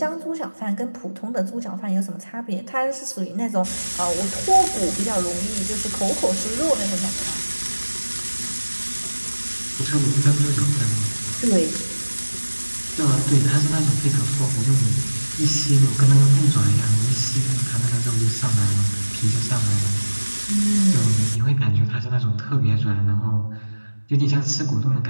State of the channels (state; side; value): inverted; both; correlation -1.00